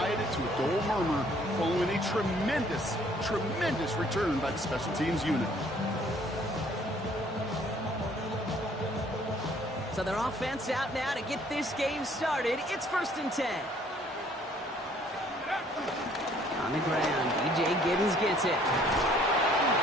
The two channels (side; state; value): both; normal; correlation 0.60